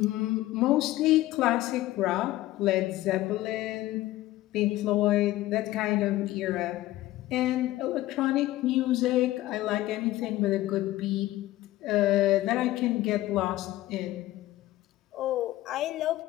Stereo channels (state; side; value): quieter; right; 16.2 dB